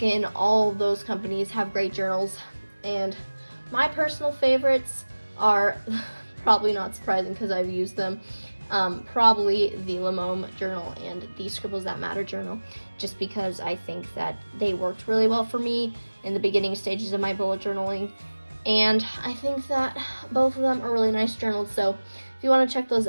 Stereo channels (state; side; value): inverted; both; correlation -1.00